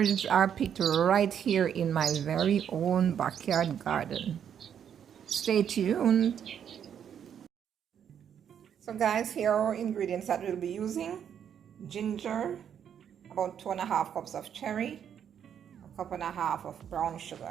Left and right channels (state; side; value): quieter; left; 8.6 dB